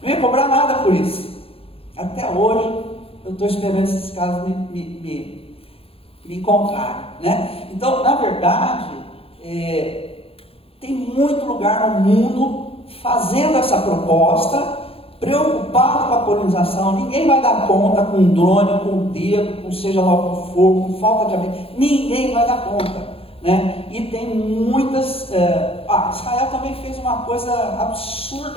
Não ia cobrar nada por isso. Até hoje eu estou esperando esses casos me encontrarem, né? Então, na verdade, tem muito lugar no mundo fazendo essa proposta, preocupado com a polinização. Ninguém vai dar conta com drone, com dedo, com seja lá o que for, com falta de abelha. Ninguém vai dar conta, né? E tem muitas... Israel também fez uma coisa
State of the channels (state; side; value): late; right; 0.27 ms